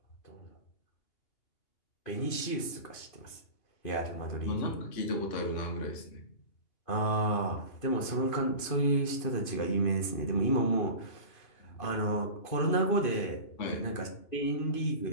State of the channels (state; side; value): late; right; 2.5 ms